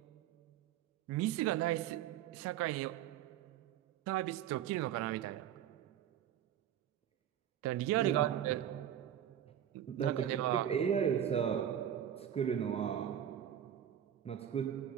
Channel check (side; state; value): left; quieter; 10.4 dB